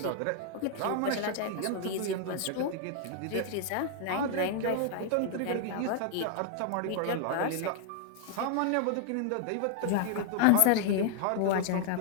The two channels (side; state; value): both; different; correlation 0.00